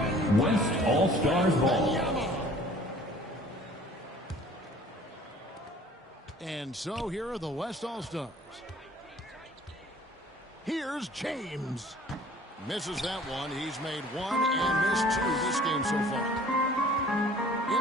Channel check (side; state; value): both; normal; correlation 0.51